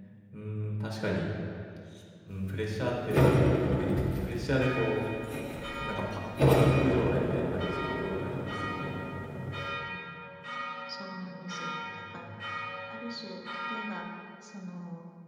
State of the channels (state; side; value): identical; both; correlation 1.00